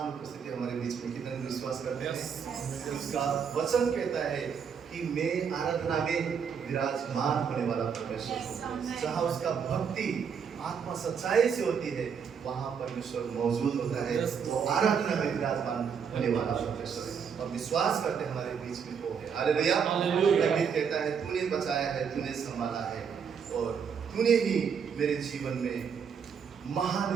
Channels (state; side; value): quieter; left; 6.8 dB